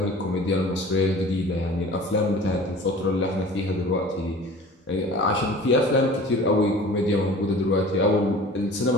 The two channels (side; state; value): both; normal; correlation 0.43